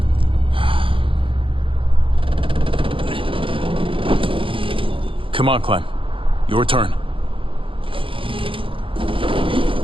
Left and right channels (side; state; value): left; late; 0.25 ms